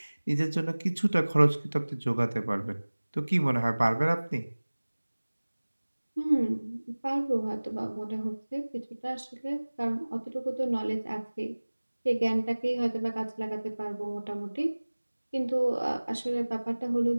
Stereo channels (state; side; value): inverted; both; correlation -1.00